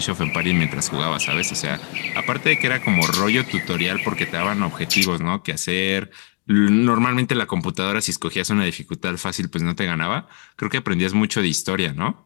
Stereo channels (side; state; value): right; quieter; 35.9 dB